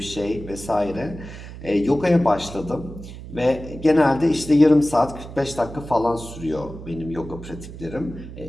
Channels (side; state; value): right; noise; hum, 13 dB below the sound